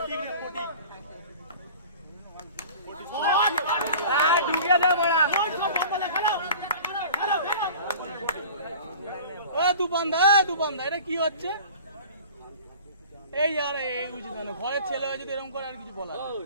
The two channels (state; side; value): inverted; both; correlation -0.42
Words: দুবান্ধা এটা কি হচ্ছে? এই আর এই উচিত না, ঘরের ছেলে হয়ে যদি এরকম করে আর কিছু বলা